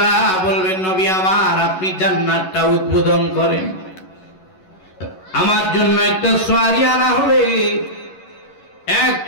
বলবেন নবী আমার আপনি জান্নাতটা উদ্বোধন করেন, আমার জন্য একটা সওয়ারি আনা হবে,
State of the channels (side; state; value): right; late; 11 ms